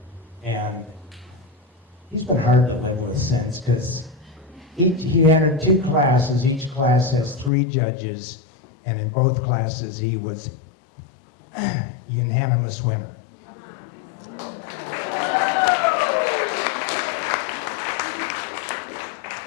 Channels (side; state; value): right; drops out; at 7.5 s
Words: And he's been hard to live with since, because he entered 2 classes. Each class has 3 judges, and in both classes he was unanimous winner.